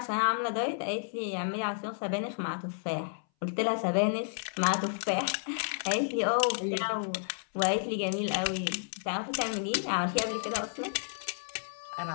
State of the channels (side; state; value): right; silent; 57 dB below the other